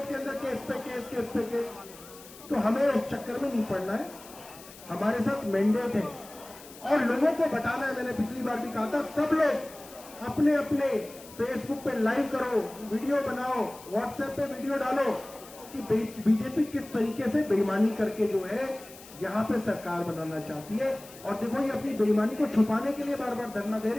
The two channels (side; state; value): left; noise; hiss, 19 dB below the sound